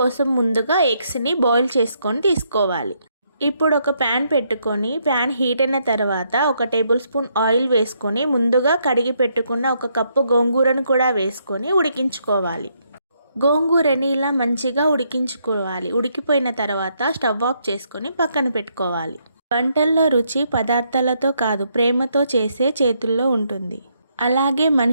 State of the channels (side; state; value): both; inverted; correlation -0.75